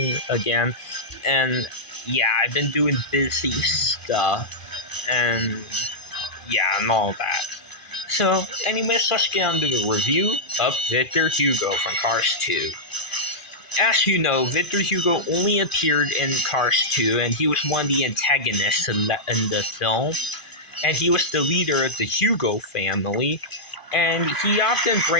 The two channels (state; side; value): late; right; 2.4 ms